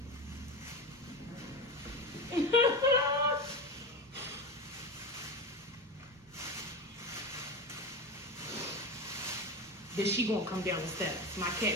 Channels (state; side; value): normal; both; correlation 0.23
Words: Then she gonna come down the steps. My